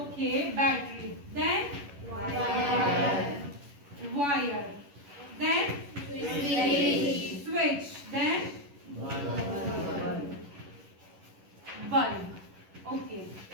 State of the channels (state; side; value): late; left; 11 ms